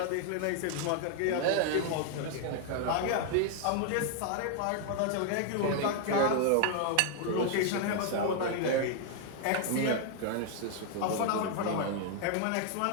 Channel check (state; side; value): different; both; correlation 0.00